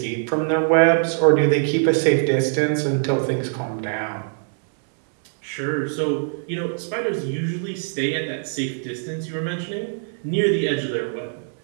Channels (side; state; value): left; silent; digital silence